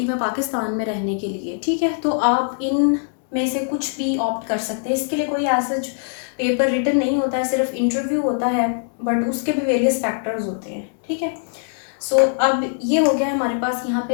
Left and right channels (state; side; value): silent; right; digital silence